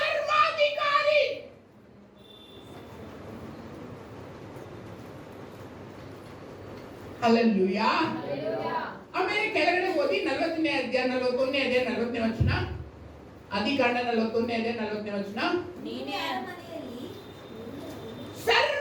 ಹಲ್ಲೆಲೂಯಾ. ಆಮೇಲೆ ಕೆಳಗಡೆ ಓದಿ 40ನೇ ಅಧ್ಯಾಯ 41ನೇ ಅಧ್ಯಾಯ 40ನೇ ವಚನ. ಆದಿಕಾಂಡ 41ನೇ ಅಧ್ಯಾಯ 40ನೇ ವಚನ. ನೀನೇ ಅರಮನೆಯಲ್ಲಿ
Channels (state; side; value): identical; both; correlation 1.00